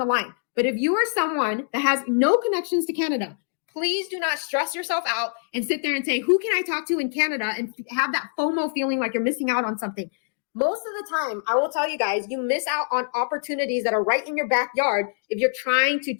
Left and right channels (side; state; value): right; silent; digital silence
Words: line. But if you are someone that has no connections to Canada, please do not stress yourself out and sit there and say, who can I talk to in Canada, and have that FOMO feeling like you're missing out on something. Most of the time, I will tell you guys, you miss out on opportunities that are right in your backyard if you're trying to